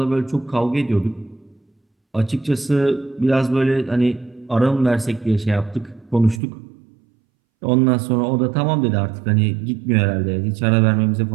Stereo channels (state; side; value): drops out; left; at 6.4 s